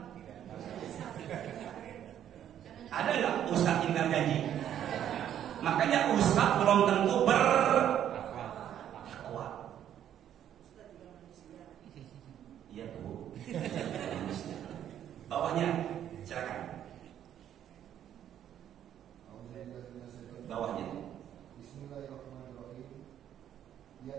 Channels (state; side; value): quieter; left; 10.4 dB